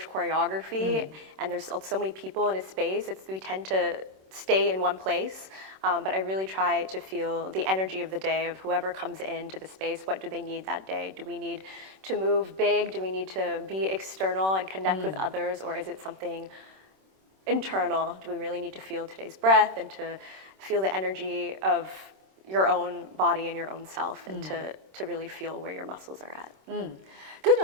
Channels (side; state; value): left; late; 26 ms